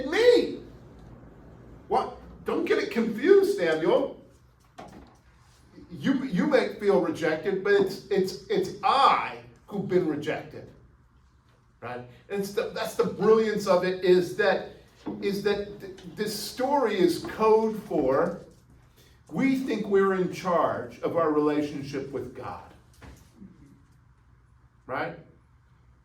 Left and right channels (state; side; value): identical; both; correlation 1.00